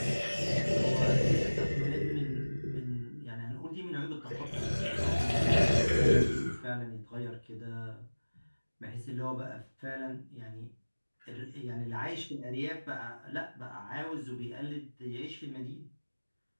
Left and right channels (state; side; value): inverted; both; correlation -1.00